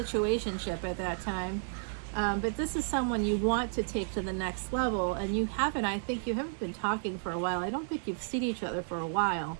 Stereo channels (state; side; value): silent; left; digital silence